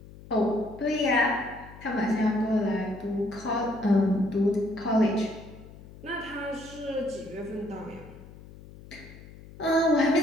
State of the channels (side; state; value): left; noise; hum, 18 dB below the sound